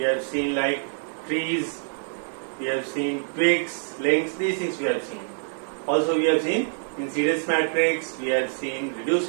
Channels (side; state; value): left; silent; 61 dB below the other